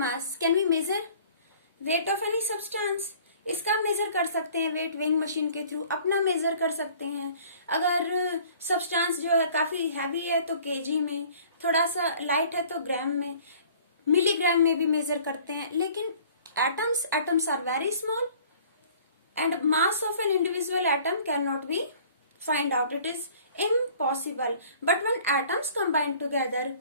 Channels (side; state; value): both; inverted; correlation -0.52